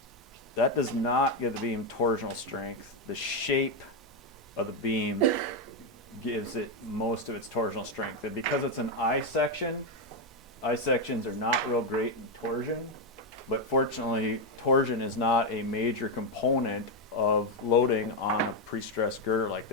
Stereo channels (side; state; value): both; normal; correlation 0.05